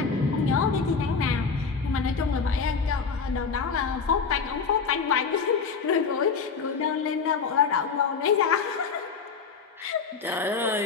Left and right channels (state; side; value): quieter; right; 5.4 dB